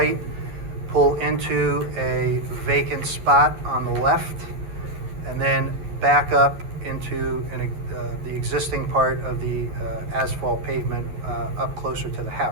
pull into a vacant spot on the left, and then back up into the existing part of the asphalt pavement up closer to the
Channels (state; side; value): late; left; 11 ms